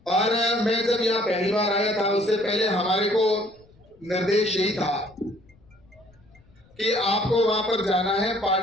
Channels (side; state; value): left; noise; rumble, 29 dB below the sound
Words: और मैं जब यहाँ पहली बार आया था उससे पहले हमारे को निर्देश यही था कि आपको वहां पर जाना है,